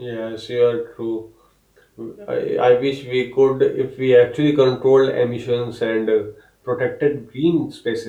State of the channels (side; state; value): both; identical; correlation 1.00